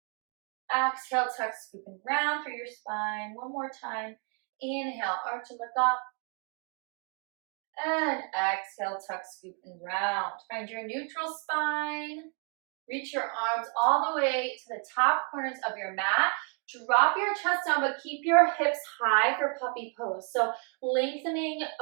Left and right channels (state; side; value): quieter; left; 38.7 dB